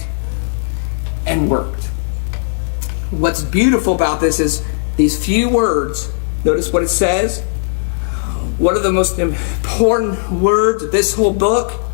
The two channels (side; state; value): right; silent; 67 dB below the other